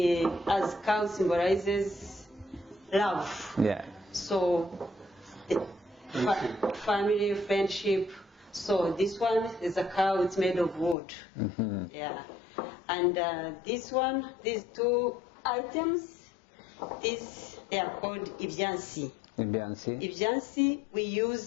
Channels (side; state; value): right; drops out; at 11.0 s